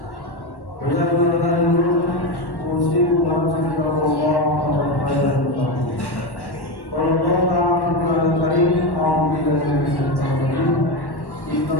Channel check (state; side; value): late; right; 1.1 ms